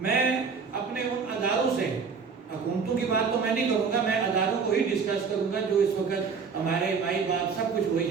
اپنے ان اداروں سے، حکومتوں کی بات تو میں نہیں کروں گا، میں اداروں کو ہی ڈسکس کروں گا جو اس وقت ہمارے مائی باپ سب کچھ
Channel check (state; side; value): quieter; left; 5.5 dB